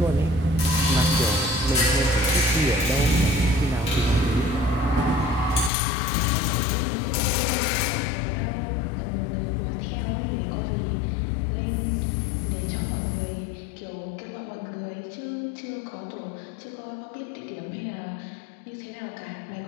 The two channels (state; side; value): drops out; right; at 5.7 s